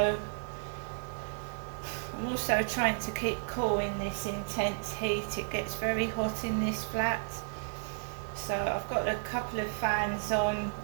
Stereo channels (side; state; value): left; silent; digital silence